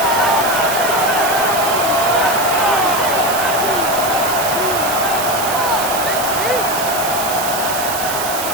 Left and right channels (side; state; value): right; noise; hiss, 5 dB below the sound